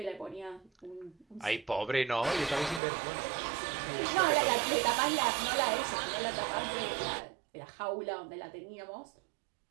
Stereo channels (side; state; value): left; drops out; at 2.8 s